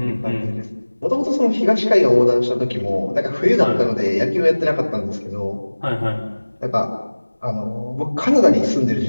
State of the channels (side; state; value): both; inverted; correlation -1.00